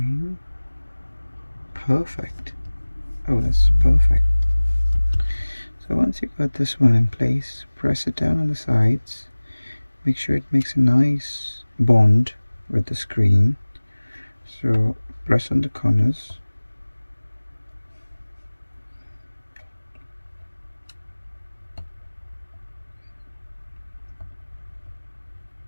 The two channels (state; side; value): inverted; both; correlation -1.00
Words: Perfect. Oh, that's perfect. So once you got this one in place, press it down on the sides. Make sure it makes a nice bond with the screen. So press on the corners.